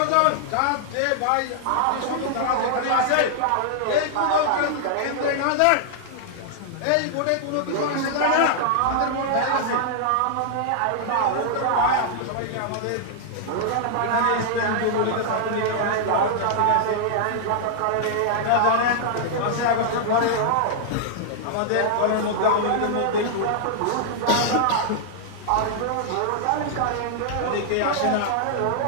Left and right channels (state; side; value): different; both; correlation -0.01